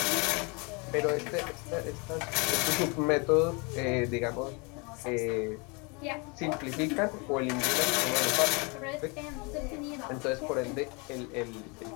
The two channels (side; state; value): right; quieter; 30.5 dB